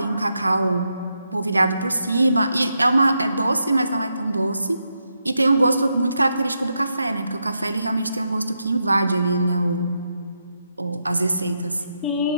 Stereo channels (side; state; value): both; inverted; correlation -0.83